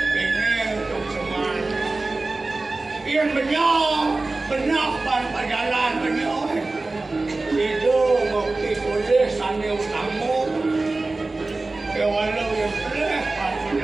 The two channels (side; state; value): left; quieter; 3.3 dB